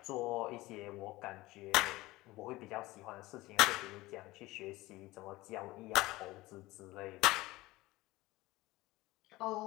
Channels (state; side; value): quieter; right; 19.4 dB